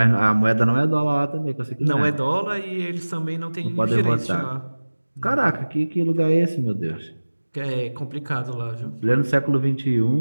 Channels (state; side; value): inverted; both; correlation -1.00